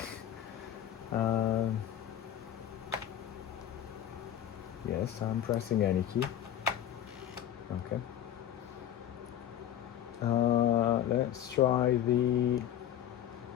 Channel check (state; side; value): quieter; right; 10.9 dB